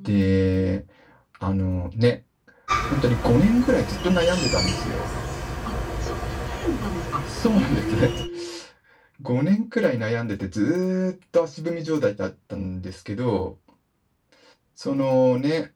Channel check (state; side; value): identical; both; correlation 1.00